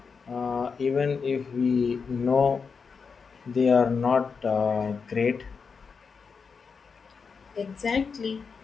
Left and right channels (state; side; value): quieter; right; 5.5 dB